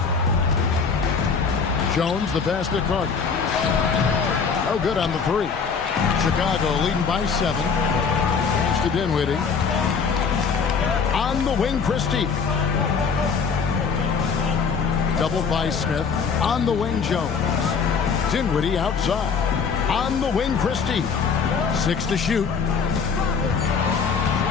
Jones, the pass to Carter. No good on the 3. Chicago leading by 7. Pass to Dinwiddie. On the wing, Christie. Double by Smith. On the wing, Jones. Dinwiddie outside. On the wing, Christie. 6 to shoot.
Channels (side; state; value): right; quieter; 5.7 dB